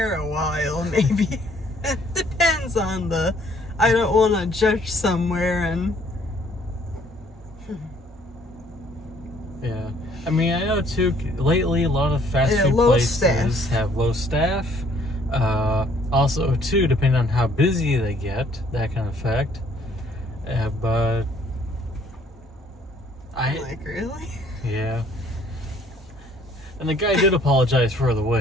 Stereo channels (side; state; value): both; normal; correlation 0.62